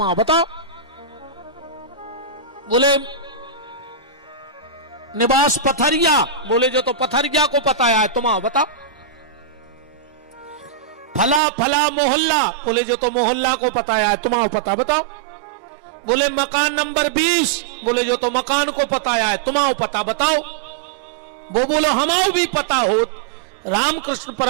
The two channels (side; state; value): left; drops out; at 11.4 s